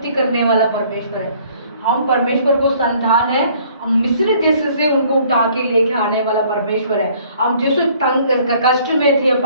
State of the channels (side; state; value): both; inverted; correlation -0.59